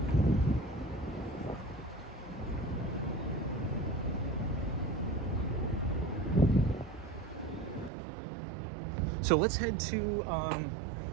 So let's head to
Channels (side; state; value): left; drops out; at 7.9 s